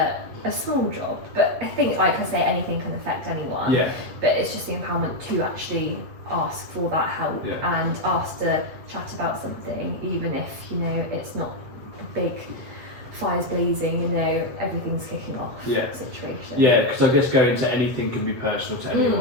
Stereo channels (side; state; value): left; late; 8.3 ms